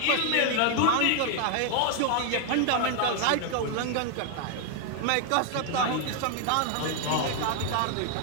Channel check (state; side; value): different; both; correlation 0.00